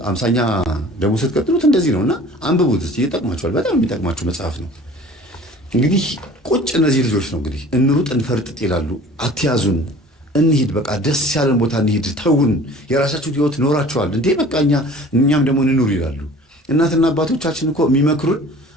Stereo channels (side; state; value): both; normal; correlation 0.46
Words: 50ኛ ደግሞ ስትቀጥሉት እንደዚህ ነው። እና አንብቡት እስኪ ይጠቅማችኋል። በጣም የሚጠቅማችሁ መጽሐፍ ነው። እንግዲህ ቁጭ እነዚህ ልጆች ነው እንግዲህ እንሩጥ እንፈርጥጥ ይላሉ። አትያዙን፣ እንሂድ፣ በቃ ደስ ያለን ቦታ እንሂድ፣ ተውን፣ የራሳችሁን ህይወት ኖራችኋል እንዴ በቃ እኛም ደግሞ እንኑር ይላሉ። እናትና አባቶቻችን እኮ የሚመክሩን